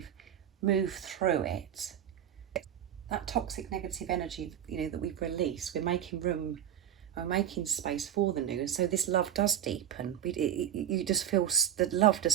moved through it, that toxic negative energy, you know, that we've released, we're making room, we're making space for the new. And so this love does deepen. You just feel the love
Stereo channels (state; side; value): quieter; left; 10.2 dB